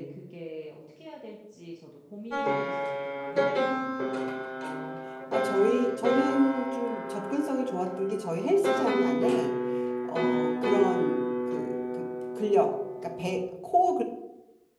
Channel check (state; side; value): identical; both; correlation 1.00